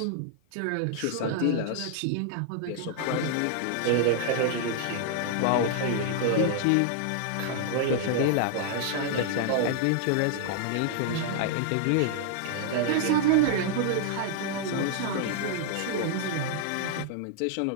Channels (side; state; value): both; different; correlation -0.01